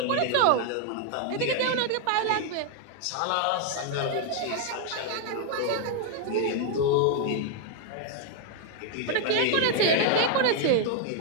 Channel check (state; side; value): different; both; correlation 0.00